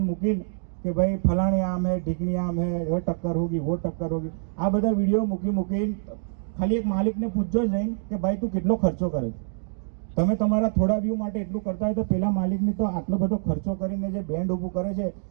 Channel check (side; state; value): left; silent; digital silence